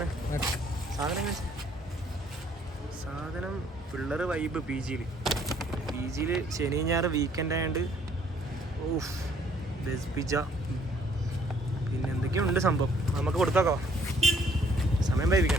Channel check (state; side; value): normal; both; correlation 0.63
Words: സാധനം പിള്ളേർ വൈബ്. PGയിൽ ശനി ഞായർ വീക്കെൻഡ് ആയതുകൊണ്ട് വെജ് പിസ്സ പിന്നെ എന്തൊക്കെയുണ്ട് സംഭവം. നമുക്ക് കൊടുത്തോക്കോ, സമയം